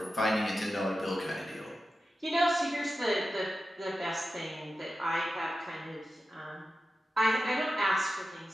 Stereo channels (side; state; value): both; normal; correlation 0.92